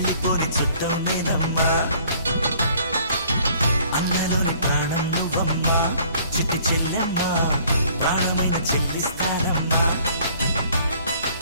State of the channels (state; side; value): inverted; both; correlation -0.58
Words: చుట్టం నేనమ్మా అన్నలోని ప్రాణం నువ్వమ్మా చిటి చెల్లెమ్మా ప్రాణమైన చెల్లిస్తానమ్మా